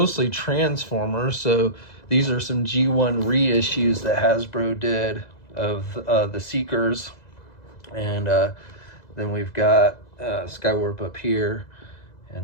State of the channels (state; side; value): late; right; 2.0 ms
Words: Transformers, so these are some G1 reissues that Hasbro did of the Seekers. And then we've got Skywarp up here,